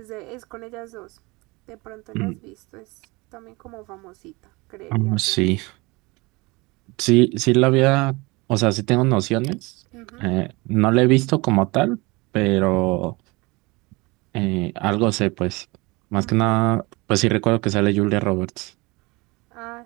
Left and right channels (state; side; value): quieter; left; 24.6 dB